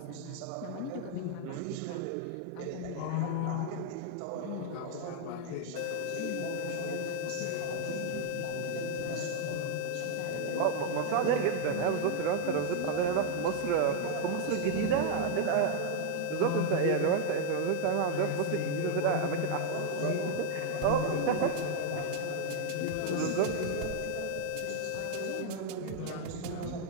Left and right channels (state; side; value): different; both; correlation 0.00